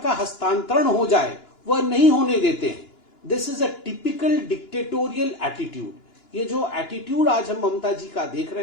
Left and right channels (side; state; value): right; late; 2.9 ms